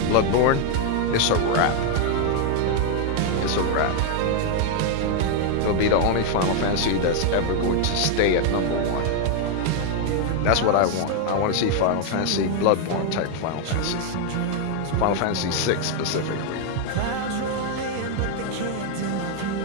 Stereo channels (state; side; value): different; both; correlation 0.00